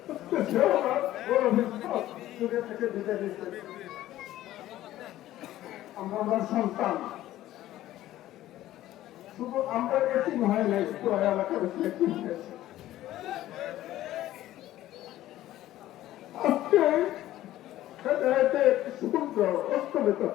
আমরা সন্তান, শুধু আমরা এটি হয় নাই, এলাকার আজকে সূর্য অস্তমিত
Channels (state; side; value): quieter; right; 14.3 dB